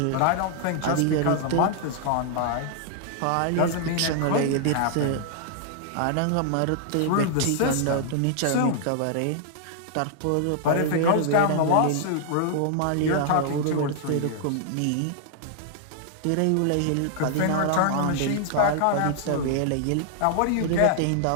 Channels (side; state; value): both; different; correlation -0.01